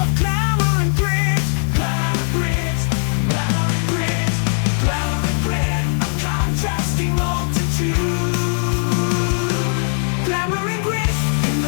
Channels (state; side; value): silent; right; digital silence